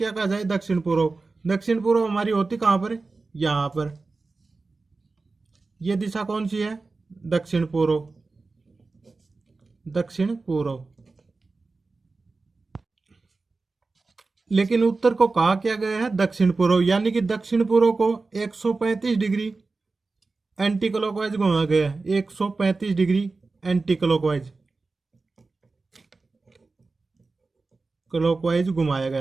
कहा जाए? दक्षिण पूर्व। दक्षिण पूर्व हमारी होती कहां पर? यहां पर। ये दिशा कौन सी है? दक्षिण पूर्व। दक्षिण पूर्व। लेकिन उत्तर को कहा क्या गया है? दक्षिण पूर्व, यानी कि दक्षिण पूर्व को 135 डिग्री एंटी क्लॉकवाइज घुमाया गया है। 135 डिग्री एंटी क्लॉकवाइज घुमाया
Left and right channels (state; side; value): quieter; left; 3.8 dB